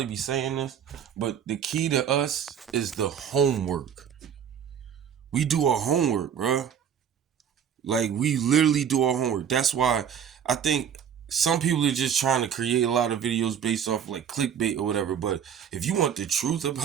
be saying this, but the key to us is the homework. We do our homework, bruh. We literally do our homework. That's why I think some people are just trying to create a lot of videos based off clickbait or whatever. But if you want the truth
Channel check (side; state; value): left; quieter; 8.3 dB